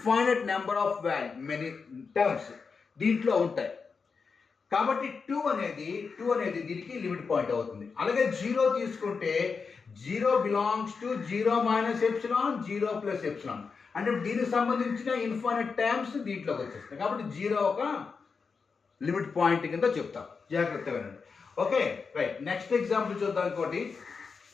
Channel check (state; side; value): quieter; right; 5.2 dB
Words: number of many terms దీంట్లో ఉంటాయి. కాబట్టి 2 అనేది దీనికి లిమిట్ పాయింట్ అవుతుంది. అలాగే 0 తీసుకుంటే 0 belongs to 0 minus epsilon 0 plus epsilon. అంటే దీనికి సంబంధించిన ఇన్ఫైనైట్ టర్మ్స్ దీంట్లోకి వచ్చేస్తాయి. కాబట్టి 0 ఒక లిమిట్ పాయింట్ కింద చెప్తాం. జాగ్రత్తగా వినండి. Okay right. నెక్స్ట్ ఎగ్జాంపుల్ చూద్దాం. ఇంకోటి